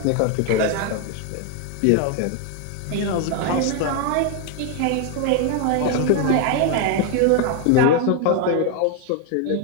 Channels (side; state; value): both; different; correlation 0.01